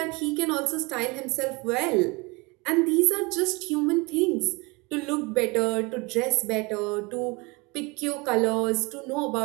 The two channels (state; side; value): quieter; left; 26.5 dB